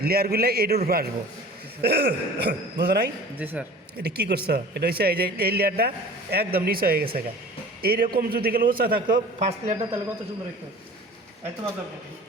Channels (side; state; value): both; normal; correlation 0.42